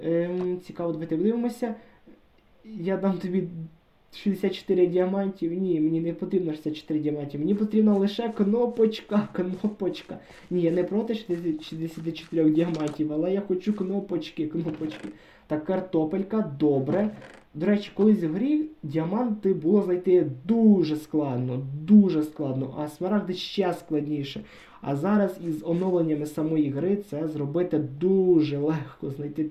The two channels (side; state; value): both; identical; correlation 1.00